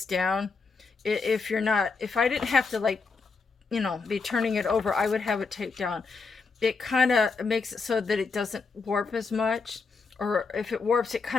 down. If I didn't have to, like, you know, be turning it over, I would have it taped down. It kind of makes it so that it doesn't warp as much. Or if it warps, it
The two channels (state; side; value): quieter; right; 4.5 dB